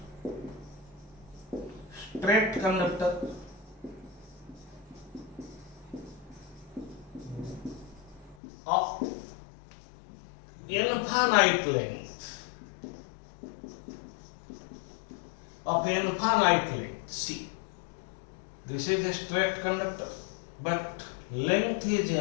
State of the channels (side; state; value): right; drops out; at 8.3 s